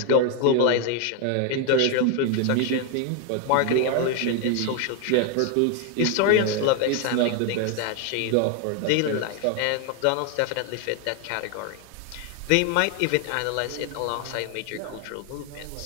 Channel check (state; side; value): different; both; correlation 0.01